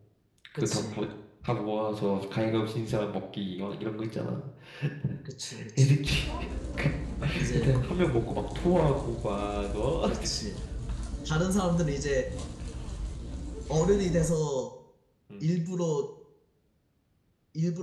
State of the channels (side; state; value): both; identical; correlation 1.00